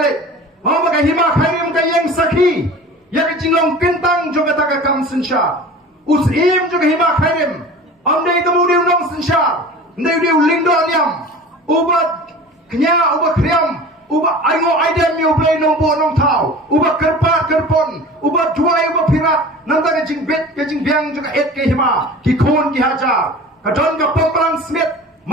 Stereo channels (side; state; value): both; normal; correlation 0.39